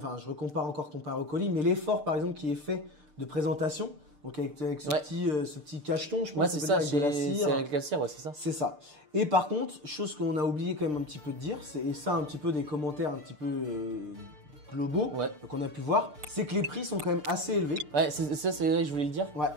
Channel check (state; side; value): late; left; 6.7 ms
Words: je recompare encore comparé au colis, mais l'effort par exemple qui est fait de présentation, donc avec ce petit cacheton, je pense. Ouais, c'est ça, avec de la cire. C'est avec la cire, ouais, c'est ça. C'est ça. Et par contre, chose qu'on a oublié quand même un petit peu de dire, et ça un petit peu des commentaires un petit peu globaux qu'on a pu voir, c'est que les prix sont quand même assez élevés. Ouais, ça c'est vrai que je voulais le dire. Ouais.